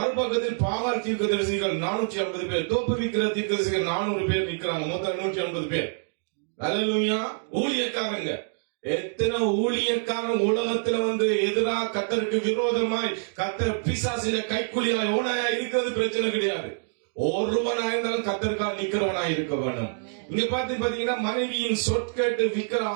பாகால் தீர்க்கதரிசிகள் 450 பேர், தோப்புவிக்கிற தீர்க்கதரிசிகள் 400 பேர் நிற்கிறாங்க. மொத்தம் 150 பேர். அல்லேலூயா. ஊழியக்காரங்க, எத்தனை ஊழியக்காரன் உலகத்துல எதிராக கர்த்தருக்கு விரோதமாய் கர்த்தர் பிசாசில கைக்குலியாய் ஓனாயா இருக்கிறது பிரச்சனை கிடையாது. ஒருவனா இருந்தாலும் கர்த்தருக்காக நிக்கிறவனாய் இருக்க வேணும். இங்க பாத்தீங்கன்னா மனைவியின் சொற்கேட்டு விக்கிர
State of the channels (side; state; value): left; silent; digital silence